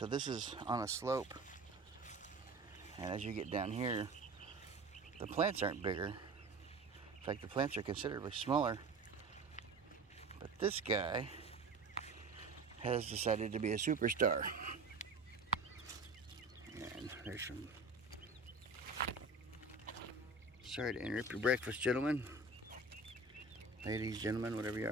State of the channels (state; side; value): quieter; left; 3.5 dB